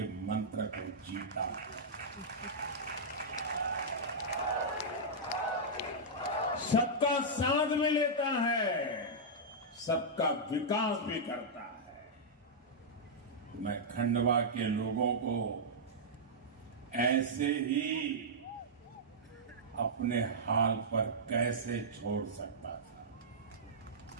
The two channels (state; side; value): normal; both; correlation -0.10